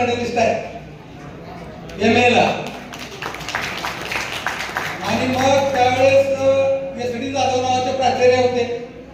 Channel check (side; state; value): both; identical; correlation 1.00